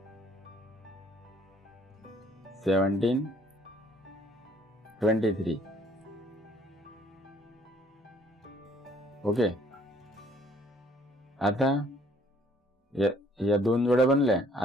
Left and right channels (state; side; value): normal; both; correlation 0.61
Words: 17 23. ओके. आता या दोन जोड्या बनल्या.